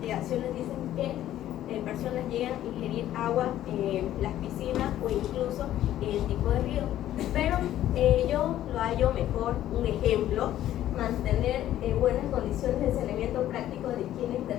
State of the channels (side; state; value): right; quieter; 12.7 dB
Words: dicen que personas llegan a ingerir agua en las piscinas o incluso en el tipo de río. Pero yo lo hallo mejor, un ejemplo, mantener buenas condiciones de saneamiento práctico de higiene e